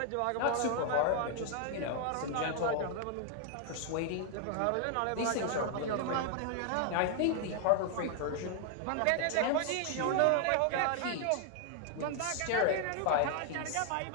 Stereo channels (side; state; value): both; different; correlation 0.00